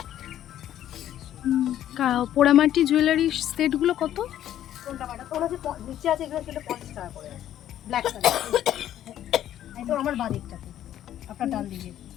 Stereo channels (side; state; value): right; quieter; 11.6 dB